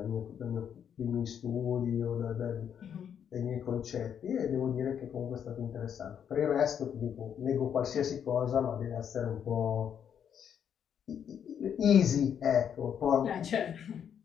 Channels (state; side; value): quieter; right; 8.4 dB